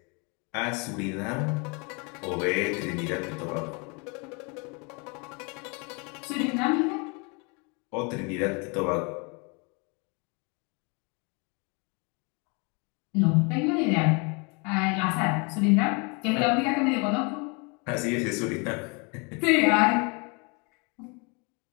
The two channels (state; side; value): quieter; right; 31.9 dB